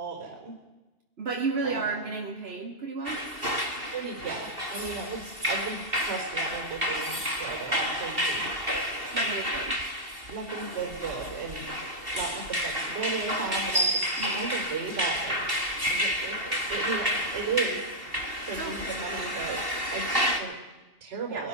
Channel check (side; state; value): left; late; 2.7 ms